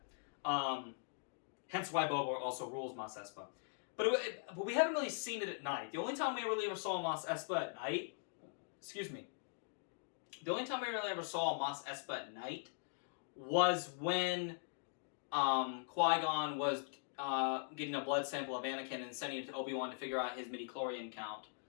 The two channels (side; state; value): right; silent; digital silence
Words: Hence why Boba also rules Mos Espa. But we haven't really seen it at night. The only time we really ever saw Mos Espa at night, the only time we really ever saw Mos Espa at night was when Qui-Gon was getting a blood sample of Anakin and sending it to Obi-Wan to figure out his midi-chlorian count